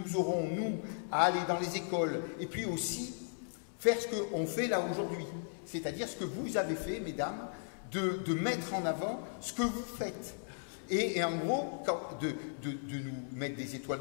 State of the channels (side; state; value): right; silent; 54 dB below the other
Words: aurons, nous, à aller dans les écoles, et puis aussi faire ce qu'on fait là aujourd'hui. C'est-à-dire ce que vous avez fait, mesdames, de mettre en avant ce que vous faites. Et en gros, de nous mettre des étoiles